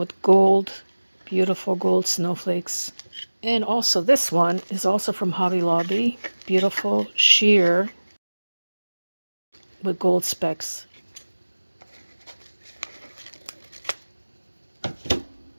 gold, beautiful gold snowflakes. And also this one is also from Hobby Lobby, beautiful sheer with gold specks.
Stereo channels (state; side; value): inverted; both; correlation -1.00